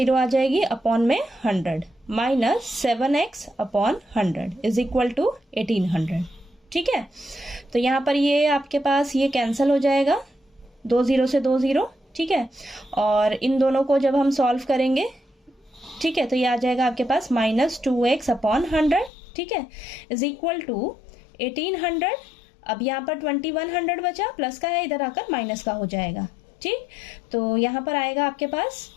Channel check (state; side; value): drops out; right; at 19.1 s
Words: आ जाएगी अपॉन में 100 minus 7x upon 100 is equal to 1800, ठीक है। तो यहाँ पर ये आपके पास ये कैंसिल हो जाएगा, 2 0 से 2 0, ठीक है। और इन दोनों को जब हम सॉल्व करेंगे, ठीक है, तो ये आ जाएगा आपके पास माइनस 2x अपॉन 100, ठीक है, इज इक्वल टू 1800। अब यहाँ पर 2100 बचा, प्लस का है, इधर आकर माइनस का हो जाएगा, ठीक। तो यहाँ पर आएगा आपके पास